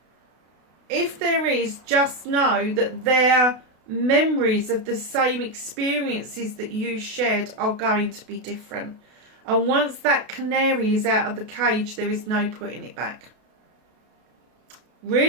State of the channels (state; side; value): late; left; 32 ms